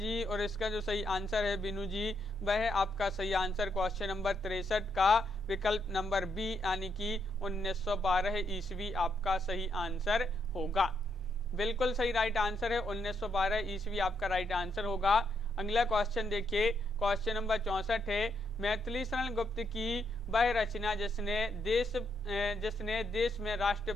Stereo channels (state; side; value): noise; right; hum, 24 dB below the sound